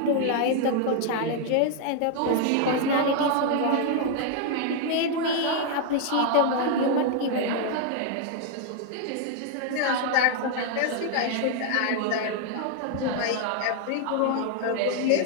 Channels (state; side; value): different; both; correlation 0.00